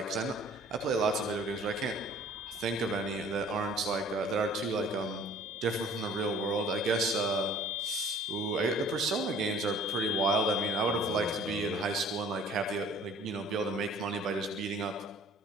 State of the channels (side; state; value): both; normal; correlation 0.52